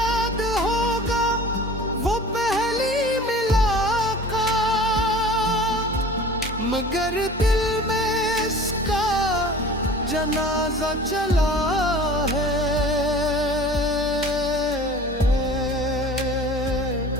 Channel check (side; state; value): both; normal; correlation 0.42